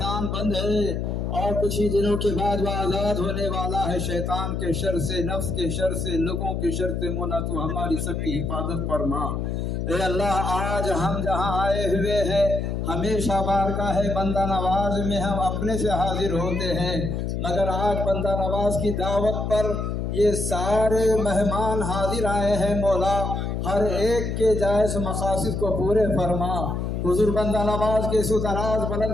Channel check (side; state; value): left; noise; hum, 2 dB below the sound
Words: बंद है और कुछ ही दिनों के बाद वह आज़ाद होने वाला है शैतान के शर से, नफ्स के शर से, लोगों के शर से। मौला तो हमारी सबकी हिफाजत फरमा। ए अल्लाह, आज हम जहाँ आए हुए हैं हमेशा बारगाह है बंदा नवाज में हम अपने से हाजिर होते हैं, मगर आज बंदा नवाज की दावत पर ये सारे मेहमान हाजिर आए हैं मौला। हर एक के जायज़ मकासद को पूरे फरमा। हुजूर बंदा नवाज के सुदराज बुलंद